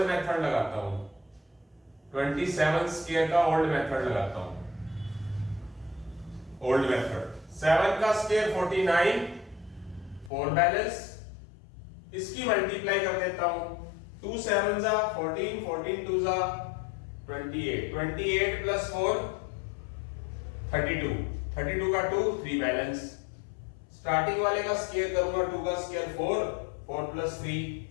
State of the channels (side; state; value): right; drops out; at 10.3 s